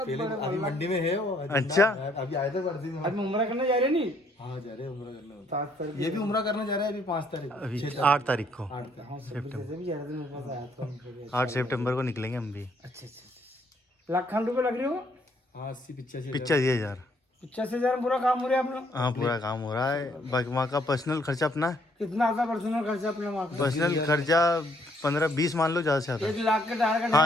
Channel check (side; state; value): both; normal; correlation 0.68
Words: पहले बड़े अभी मंडी में है वो अच्छा। अभी आए थे बर्दी में। अभी उम्र करने जा रहे नहीं हाँ जा रहे हैं उम्र करने। 7 तारीख ये भी उम्र करने जा रहे हैं अभी 5 तारीख अभी 6 8 तारीख को 8 तारीख। हाँ सितंबर से भी जा रहे थे मेरे पास आया था उनको। 8 सितंबर को निकलेंगे हम भी। अच्छा अच्छा लाख खंड रुपये लग रही हो हाँ 80-85 85,000। 85,000 पूरा काम हो रहा है अपना हाँ पूरा काम हो रहा है। बाकी वहाँ का पर्सनल खर्चा अपना है। कितना आता पर्सनल खर्चा अपने वहाँ का पर्सनल खर्चा 15-20 मान लो, ज़्यादा से ज़्यादा। 1 लाख का टारगेट